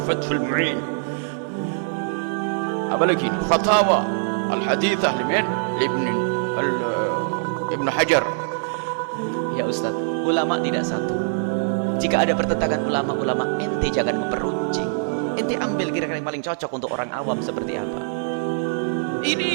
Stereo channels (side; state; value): left; silent; 56 dB below the other